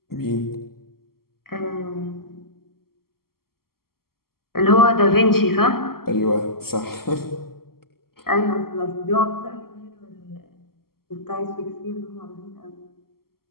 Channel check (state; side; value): late; right; 0.93 ms